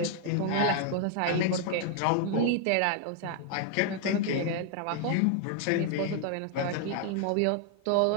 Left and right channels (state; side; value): different; both; correlation 0.00